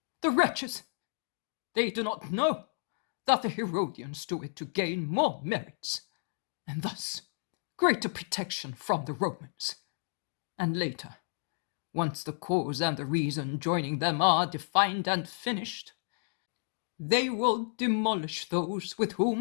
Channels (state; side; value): silent; right; digital silence